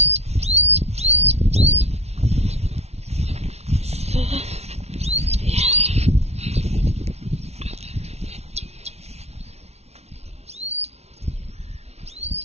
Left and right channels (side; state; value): left; late; 0.31 ms